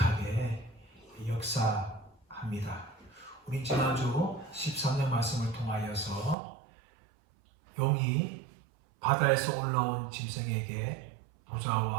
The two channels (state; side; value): drops out; left; at 6.4 s